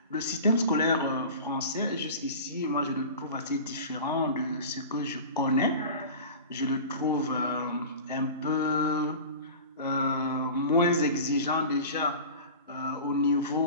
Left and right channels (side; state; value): both; inverted; correlation -0.35